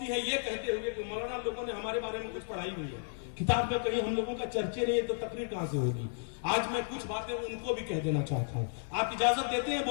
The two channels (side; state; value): right; silent; digital silence